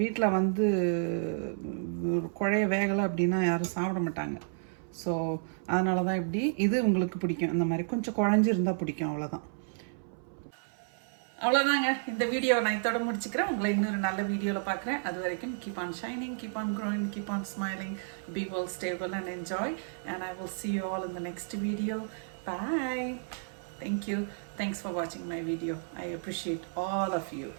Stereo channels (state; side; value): silent; left; 57 dB below the other